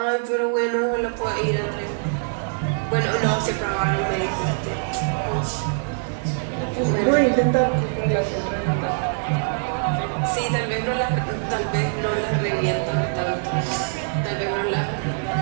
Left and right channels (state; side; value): silent; left; 63 dB below the other